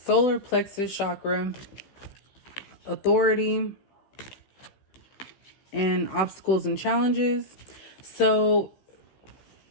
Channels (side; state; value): right; late; 15 ms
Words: plexus chakra, authority, and obstacles and challenges. So